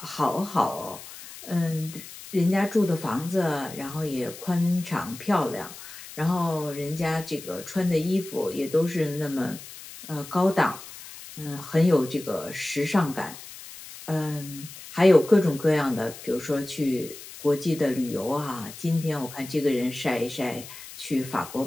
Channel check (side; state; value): left; noise; hiss, 15 dB below the sound